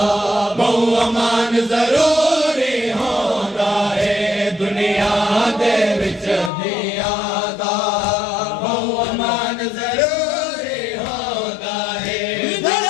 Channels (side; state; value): right; drops out; at 6.5 s